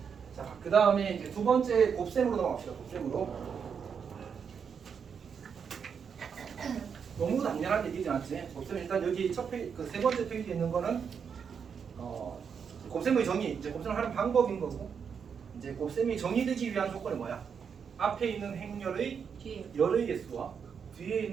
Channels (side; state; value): left; quieter; 6.8 dB